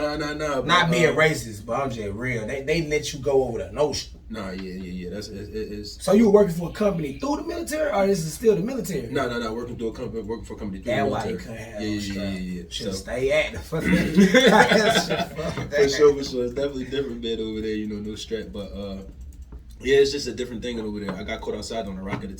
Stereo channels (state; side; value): identical; both; correlation 1.00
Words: Not being racist, but I'm just real. They let you go over the notion. Nah, yeah. That's it's. So you were working for a company through the military, or this is still the military? No. Working for a company through the military. That's why you couldn't have no strap. Yeah. Should stay active. For sure. It's definitely different bed over there. No strap, but yeah, it's just a different thing over there. I got caught outside on a rocket